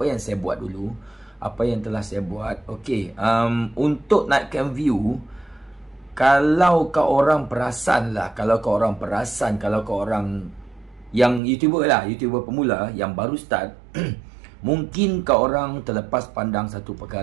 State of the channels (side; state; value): left; drops out; at 11.4 s